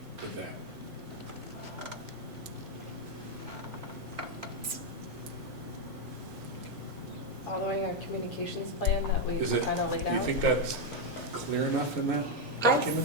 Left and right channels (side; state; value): both; normal; correlation 0.02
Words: that? Following our communications plan that we Is it, kind of laid do you out? think that's clear enough in that I